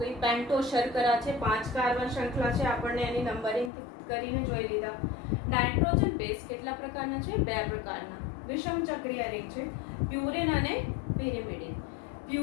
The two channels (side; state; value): right; drops out; at 3.7 s